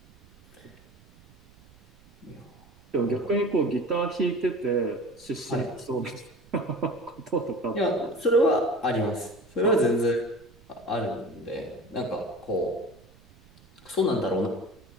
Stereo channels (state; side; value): noise; right; rumble, 26 dB below the sound